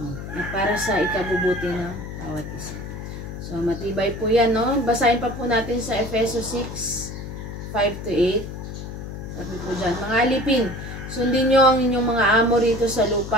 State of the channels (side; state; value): left; noise; hum, 9 dB below the sound